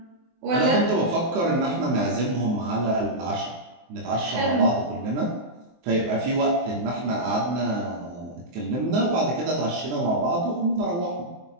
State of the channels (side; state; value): left; late; 23 ms